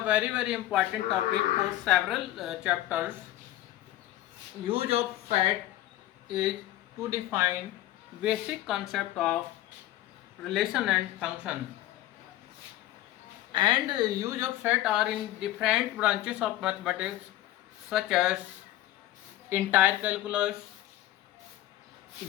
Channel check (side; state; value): right; quieter; 14.9 dB